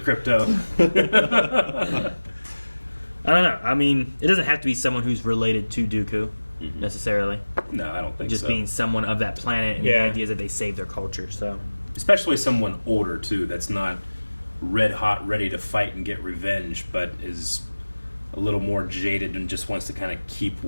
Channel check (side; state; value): both; inverted; correlation -1.00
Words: I don't know. I mean, it doesn't have to be someone who's related to Dooku, necessarily. No, I don't think just so. being someone of that planet, and the idea is that they save their culture, so... Especially someone older, too, that's not red hot, ready to fight and get revenge, but is a little more jaded and just wants to kind of keep